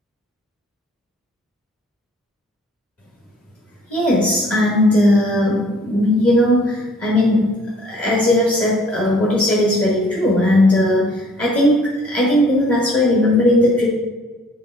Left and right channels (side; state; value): both; normal; correlation 0.58